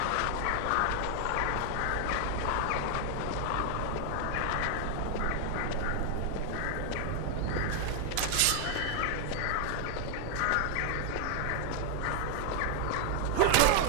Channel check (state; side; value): different; both; correlation 0.00